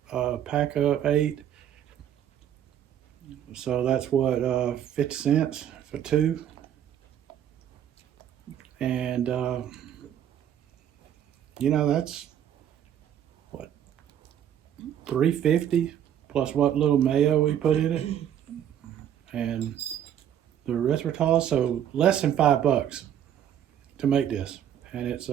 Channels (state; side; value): quieter; left; 10.0 dB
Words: a pack of 8. So that's what, 50 cents for 2. And, you know, that's what, $3.50 plus what little mayo we put in it. And the erythritol, so less than $5 to make this. And it's